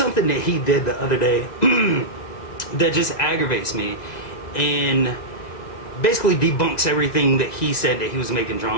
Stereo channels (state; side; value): late; right; 1.9 ms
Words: that he did the other day that just aggravates me and basically debunks everything that he said that he was making